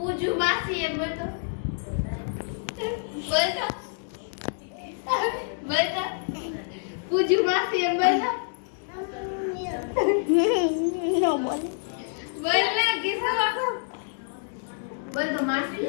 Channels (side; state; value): right; silent; digital silence